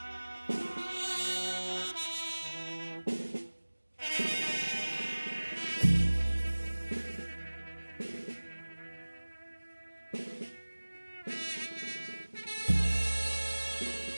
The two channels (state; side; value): inverted; both; correlation -1.00